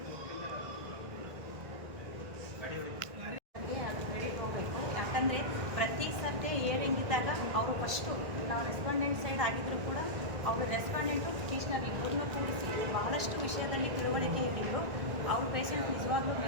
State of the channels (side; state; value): left; late; 1.6 ms